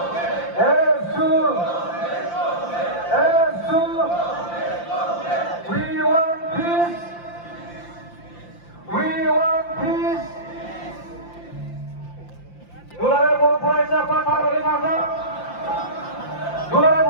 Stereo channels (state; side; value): late; right; 5.8 ms